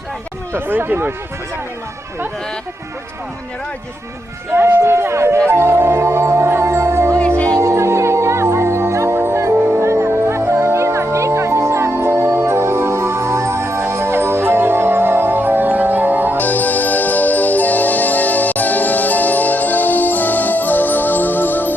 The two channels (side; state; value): both; normal; correlation 0.81